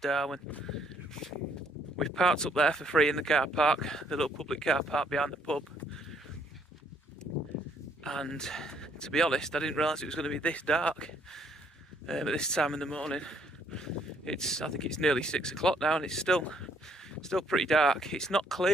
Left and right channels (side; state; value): both; normal; correlation 0.67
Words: We've parked up there for free in the car park, the little public car park behind the pub. And to be honest, I didn't realise it was going to be this dark at this time in the morning. I think it's nearly 6 o'clock now, and it's still pretty dark. It's not